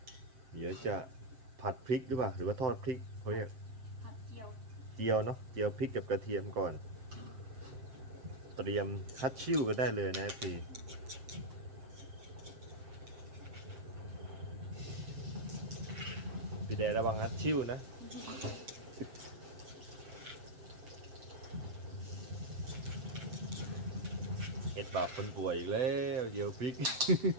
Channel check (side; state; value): left; late; 7.6 ms